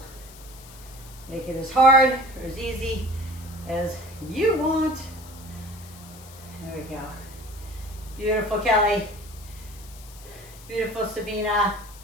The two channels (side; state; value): left; noise; hiss, 19 dB below the sound